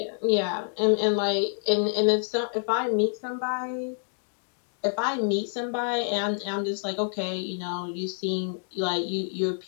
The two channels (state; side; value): silent; right; 60 dB below the other